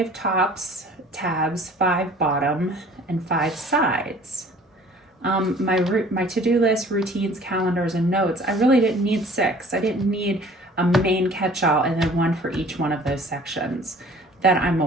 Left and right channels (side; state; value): both; normal; correlation 0.50